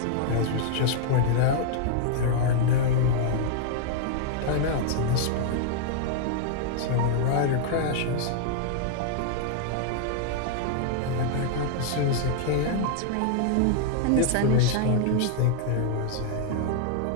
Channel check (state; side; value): different; both; correlation -0.01